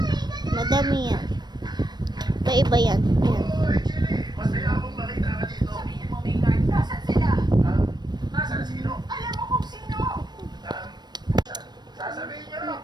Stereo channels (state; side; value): late; left; 0.21 ms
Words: Madami yan. Iba-iba yan. Ayan.